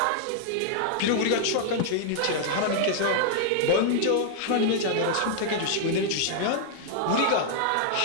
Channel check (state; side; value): different; both; correlation -0.01